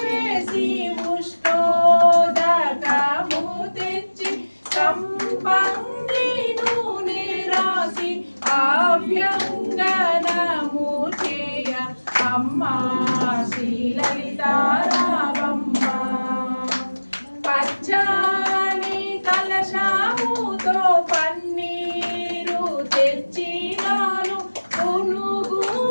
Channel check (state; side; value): inverted; both; correlation -1.00